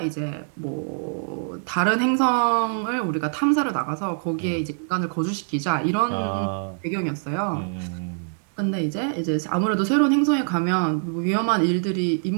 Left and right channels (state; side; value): silent; left; digital silence